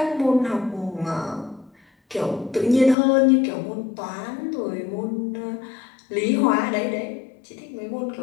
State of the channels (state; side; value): drops out; right; at 3.0 s